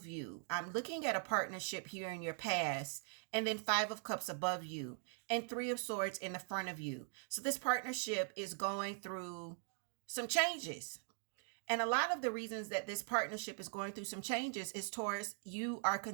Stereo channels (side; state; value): left; silent; 50 dB below the other